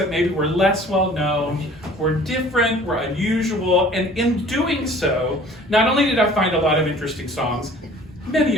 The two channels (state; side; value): normal; both; correlation 0.49